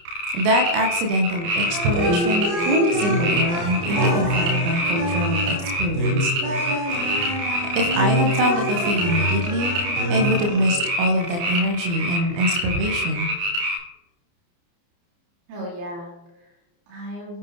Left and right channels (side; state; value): left; late; 29 ms